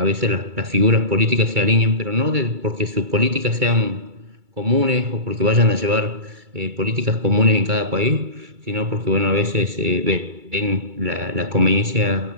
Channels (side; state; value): left; late; 2.3 ms